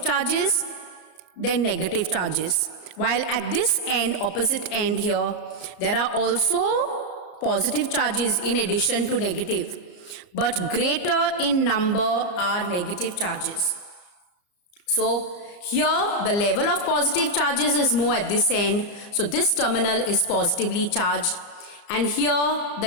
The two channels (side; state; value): right; late; 34 ms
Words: charges than negative charges. While at this end, opposite end here, there are also positive charges in addition to negative, but greater in number are negative charges. So here the level of positive charges is more at this end, so this terminal is positively charged, and here the